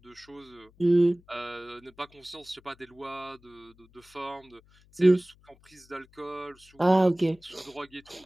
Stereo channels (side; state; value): left; noise; hum, 29 dB below the sound